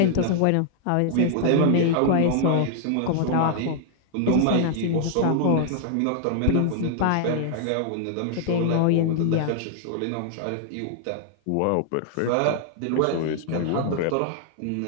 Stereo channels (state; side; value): different; both; correlation 0.00